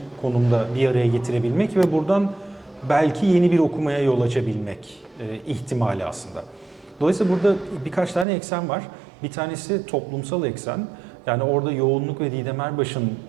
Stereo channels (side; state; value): left; drops out; at 8.2 s